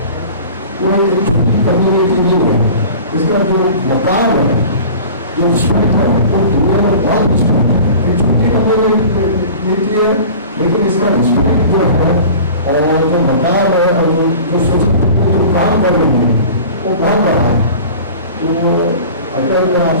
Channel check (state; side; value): inverted; both; correlation -0.41